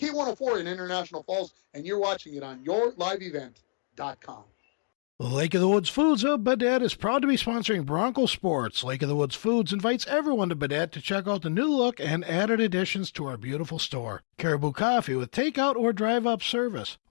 in International Falls, and you're watching it on yourliveevent.com. Lake of the Woods Foods of Baudette is proud to be sponsoring Bronco Sports. Lake of the Woods Foods invites everyone to Baudette to check out the new look and added additions to our beautiful store. Caribou Coffee with takeout or drive-up service.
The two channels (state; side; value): silent; right; digital silence